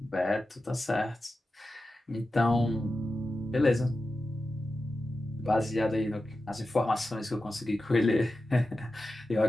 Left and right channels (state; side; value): normal; both; correlation 0.92